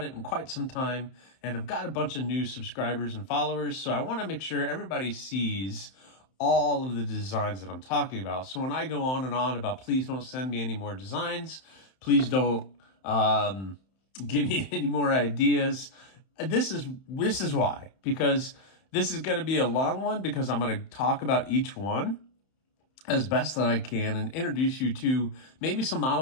it in quite some time, and I've got a bunch of new subscribers and followers, so I want to make sure everybody sees all of the designs that I'm talking about. So when I go on and on about please don't send me any more designs, please don't give me any more ideas, this is why, because this is going to be a long one because I'm going to talk about each one as best that I can and introduce you to maybe some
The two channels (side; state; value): right; late; 31 ms